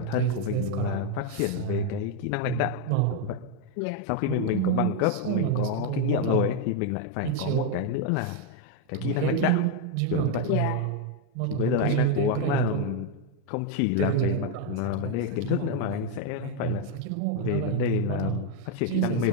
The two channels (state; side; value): different; both; correlation 0.01